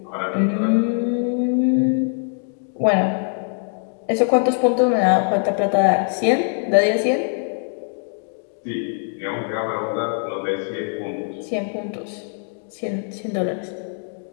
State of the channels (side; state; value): right; silent; 57 dB below the other